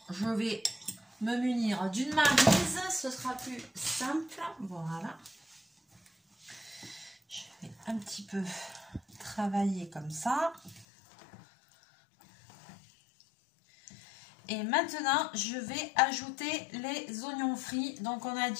je vais me munir d'une maryse. Ce sera plus simple. Voilà. Je vais un petit peu travailler comme ça. Et maintenant, je vais ajouter les oignons frits. Donc, on a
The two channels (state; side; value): drops out; right; at 10.9 s